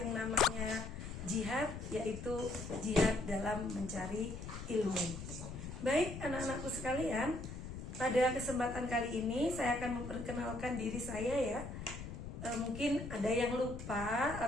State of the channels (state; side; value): noise; left; rumble, 9 dB below the sound